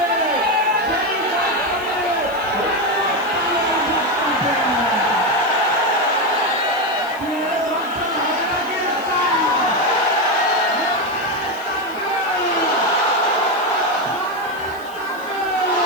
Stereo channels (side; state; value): left; noise; hiss, 23 dB below the sound